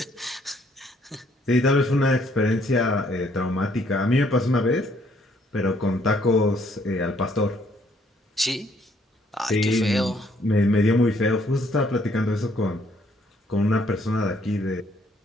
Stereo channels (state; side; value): normal; both; correlation 0.67